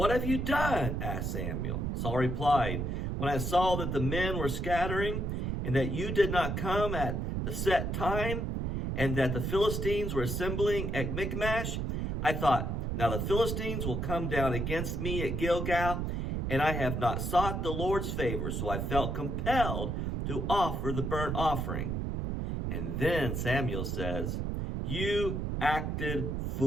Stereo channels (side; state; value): right; noise; rumble, 1 dB below the sound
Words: have you done?" asked Samuel. Saul replied, "When I saw that the men were scattering, and that you did not come at the set time, and that the Philistines were assembling at Michmash, I thought, now the Philistines will come down against me at Gilgal, and I have not sought the Lord's favor, so I felt compelled to offer the burnt offering." And then Samuel says, "You acted